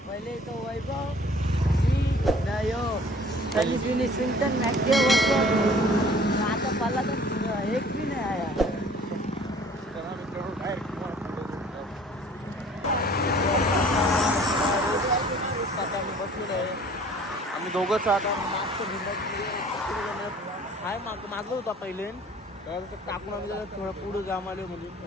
पहिले तो वैभव त्यांनी फिनिशिंग तर मॅक्टिवा बसतो आता पल्ला तर एक बी नाही आया. चला मित्रांनो डायरेक्ट आता आम्ही बसलेलो आहे. आम्ही दोघंच आता मागचं हाय मागं होता पहिले तर टाकून आम्ही जरा थोडं पुढं जाम आलो म्हणजे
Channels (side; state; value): both; normal; correlation 0.52